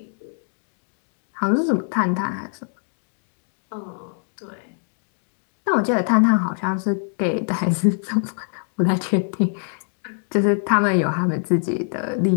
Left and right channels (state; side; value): silent; right; 63 dB below the other